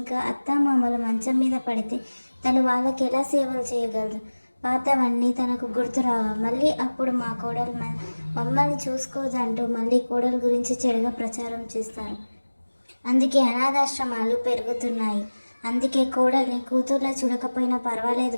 అత్తామామలు మంచం మీద పడితే తను వాళ్ళకి ఎలా సేవలు చేయగలదు? పాతవన్నీ తనకు గుర్తురావా? మళ్ళీ అప్పుడు మా కోడలు మమ్మల్ని చూసుకోదంటూ మళ్ళీ కోడలు గురించి చెడుగా ప్రచారం చేస్తారు. అందుకే అనాథాశ్రమాలు పెరుగుతున్నాయి. అందుకే కోడల్ని కూతుర్లా చూడకపోయినా పర్వాలేదు,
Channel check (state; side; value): inverted; both; correlation -1.00